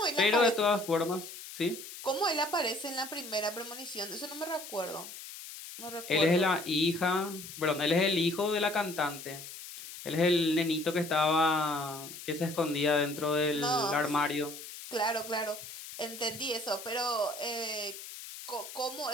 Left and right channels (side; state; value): left; noise; hiss, 12 dB below the sound